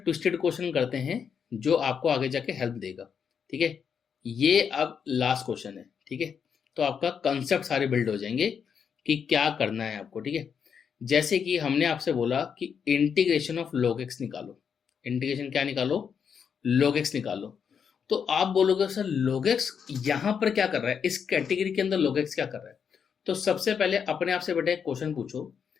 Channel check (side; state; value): right; quieter; 7.0 dB